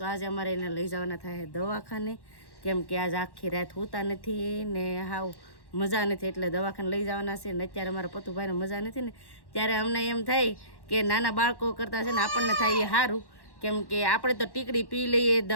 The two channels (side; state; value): right; late; 1.1 ms